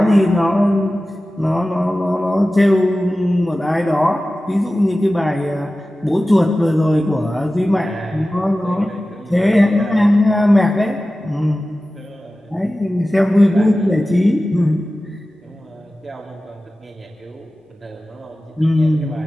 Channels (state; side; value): normal; both; correlation 0.95